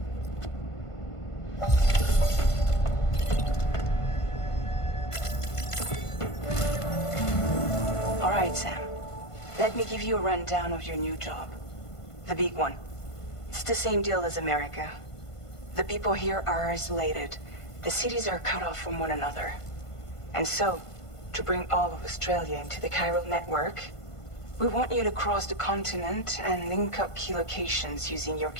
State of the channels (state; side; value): late; right; 1.5 ms